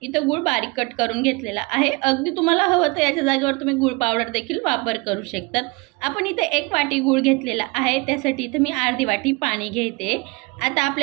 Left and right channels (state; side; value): quieter; left; 26.3 dB